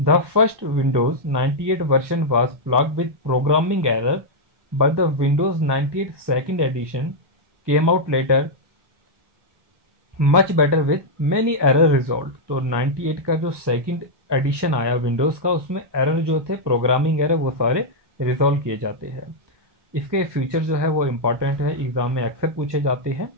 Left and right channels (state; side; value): late; left; 1.1 ms